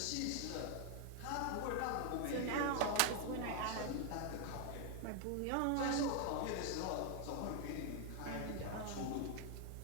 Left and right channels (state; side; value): different; both; correlation 0.00